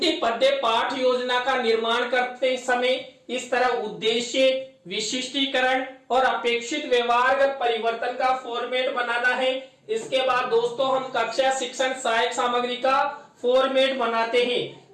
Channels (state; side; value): identical; both; correlation 1.00